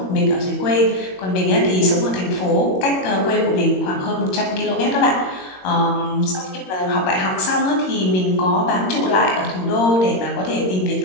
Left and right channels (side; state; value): right; late; 22 ms